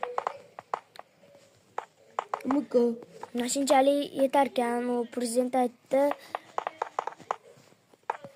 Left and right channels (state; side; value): identical; both; correlation 1.00